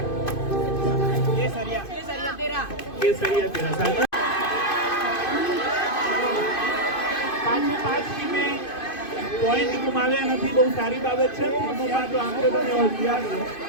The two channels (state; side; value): late; right; 2.5 ms